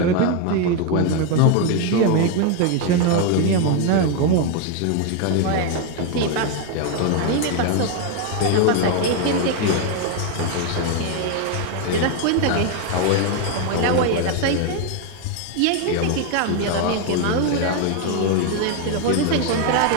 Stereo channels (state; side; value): different; both; correlation 0.01